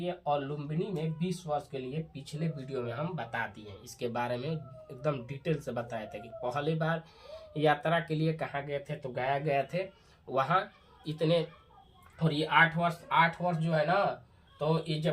और लुम्बिनी में 20 वर्ष के लिए, पिछले वीडियो में हम बता दिए। इसके बारे में एकदम डिटेल से बताए थे कि पहली बार यात्रा के लिए कहाँ गए थे, तो गया गए थे वहाँ इतने। और ये 8 वर्ष जो है ना, तो ये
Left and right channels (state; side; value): identical; both; correlation 1.00